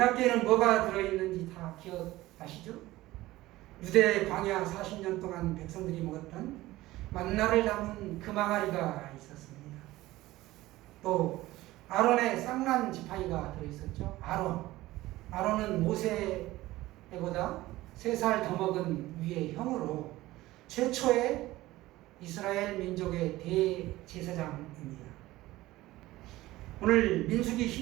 뭐가 들어있는지 다 기억하시죠? 유대 광야 40년 동안 백성들이 먹었던 만나를 담은 금항아리가 있었습니다. 또 아론의 쌍난 지팡이가 들어있었죠. 아론은 모세보다 3살 더 먹은 위의 형으로 최초의 이스라엘 민족의 대제사장입니다. 오늘 민수기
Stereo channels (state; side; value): quieter; left; 17.4 dB